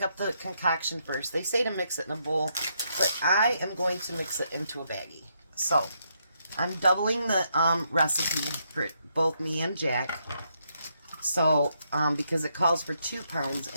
up the concoction first. They say to mix it in a bowl, but I am going to mix it into a baggie. So, I'm doubling the recipe for both me and Jack. So, because it calls for 2 pounds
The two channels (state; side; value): inverted; both; correlation -0.77